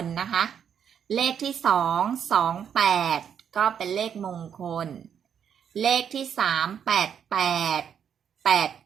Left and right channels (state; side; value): quieter; left; 8.2 dB